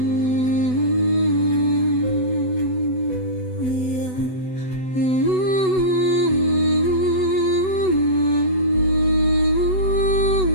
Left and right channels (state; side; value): late; right; 8.0 ms